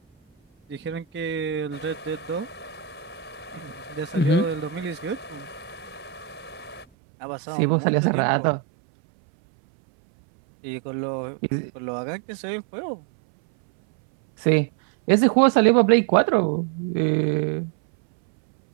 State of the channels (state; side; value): drops out; left; at 6.9 s